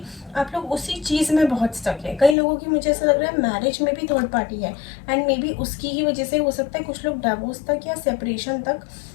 आप लोग उसी चीज़ में बहुत स्टक है। कई लोगों की मुझे ऐसा लग रहा है मैरिज में भी 3rd पार्टी है, एंड मे बी उसकी ही वजह से हो सकता है कुछ लोग डिवोर्स तक या सेपरेशन तक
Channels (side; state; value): right; drops out; at 2.4 s